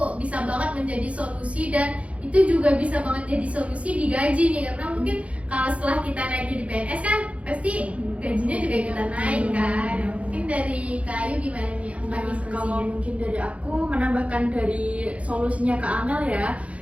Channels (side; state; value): left; late; 0.064 ms